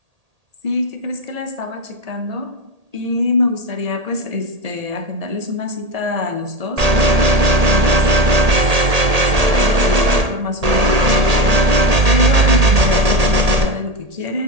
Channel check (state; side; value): late; left; 1.8 ms